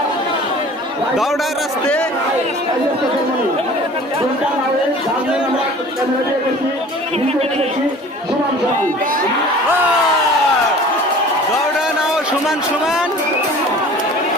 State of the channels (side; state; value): both; normal; correlation 0.45